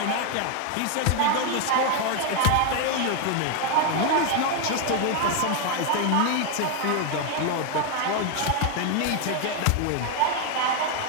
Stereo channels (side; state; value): both; different; correlation 0.01